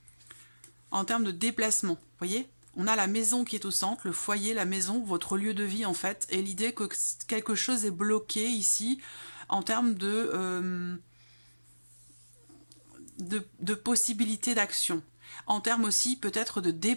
déplacement. Vous voyez? On a la maison qui est au centre, le foyer, la maison, votre lieu de vie en fait, et l'idée que quelque chose est bloqué ici, en termes de possibilités d'action. En termes aussi peut-être de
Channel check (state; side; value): inverted; both; correlation -1.00